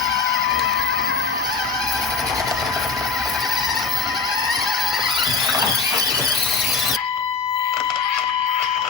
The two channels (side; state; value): right; quieter; 4.9 dB